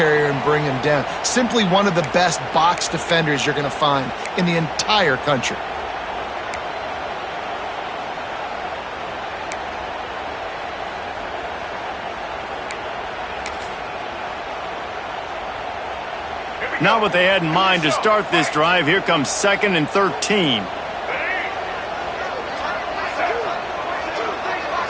and bring him down. Simply one of the best box defenders you're going to find in the entire country. Not what they had in mind to start this drive. Here comes 2nd and 13.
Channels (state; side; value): identical; both; correlation 1.00